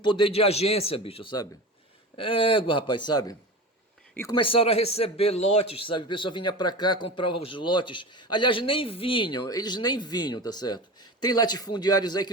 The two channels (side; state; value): both; normal; correlation 0.29